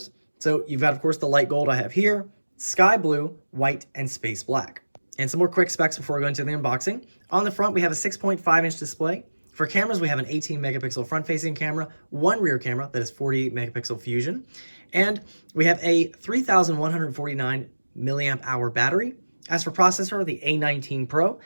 So you've got, of course, the light gold I have here, sky blue, white, and space black. And some more quick specs before we go into the unboxing. On the front, we have a 6.5-inch display. For cameras, we have an 18-megapixel front-facing camera, one rear camera that is 48-megapixel fusion, and we have a 3,149 milliamp hour battery. As for processor, the A19 Pro.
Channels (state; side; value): inverted; both; correlation -1.00